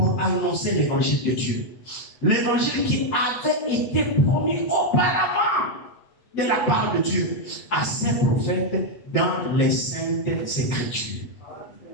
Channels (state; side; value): late; right; 8.1 ms